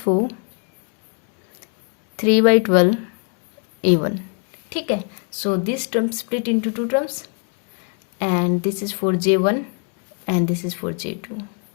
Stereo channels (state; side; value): quieter; right; 39.5 dB